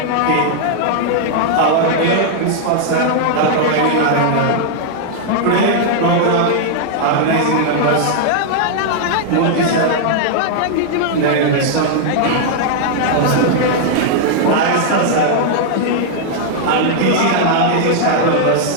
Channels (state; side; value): different; both; correlation -0.01